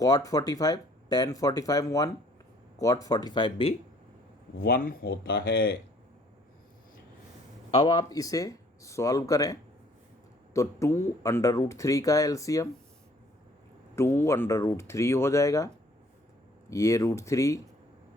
45 tan 45 1 cot 45 भी 1 होता है। अब आप इसे सॉल्व करें तो 2√3 का एलसीएम 2√3 हो जाएगा, ये √3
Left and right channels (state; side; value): normal; both; correlation 0.59